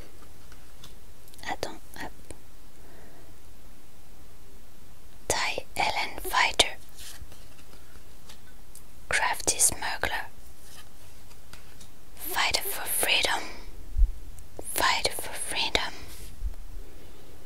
Attends, hop. Ty Ellen Fighter. Crafty Smuggler. Fighter for Freedom.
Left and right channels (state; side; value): identical; both; correlation 1.00